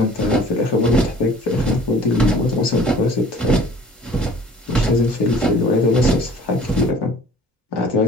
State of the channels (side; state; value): both; normal; correlation 0.50